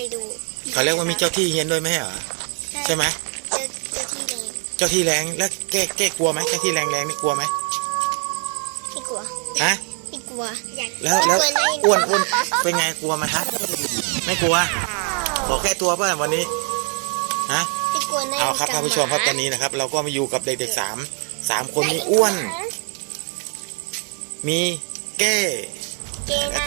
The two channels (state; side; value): quieter; left; 39.8 dB